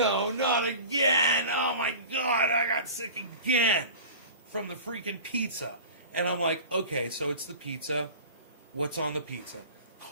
not again. Oh my God, I got sick again from the freaking pizza. And I'm like, okay, so it's the pizza. What's on the pizza?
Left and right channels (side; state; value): both; inverted; correlation -0.37